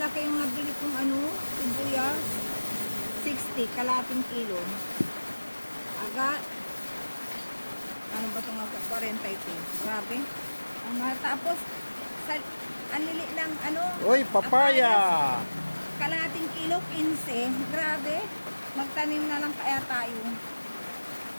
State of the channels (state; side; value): inverted; both; correlation -1.00